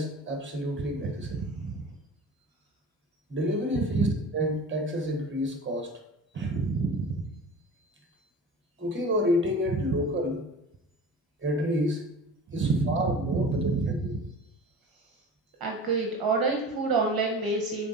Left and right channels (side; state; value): both; normal; correlation 0.37